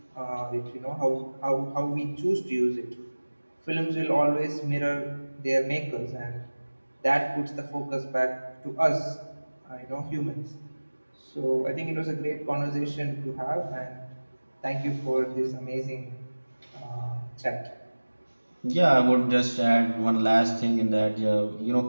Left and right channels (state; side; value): inverted; both; correlation -1.00